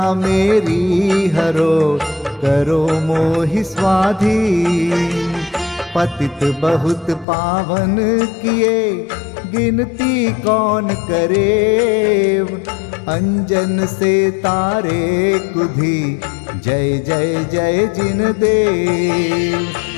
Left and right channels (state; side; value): drops out; right; at 7.2 s